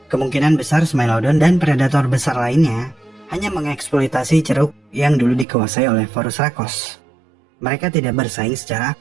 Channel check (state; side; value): drops out; left; at 5.5 s